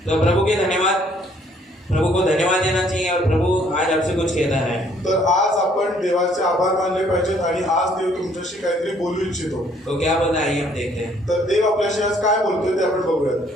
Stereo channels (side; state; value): both; normal; correlation 0.63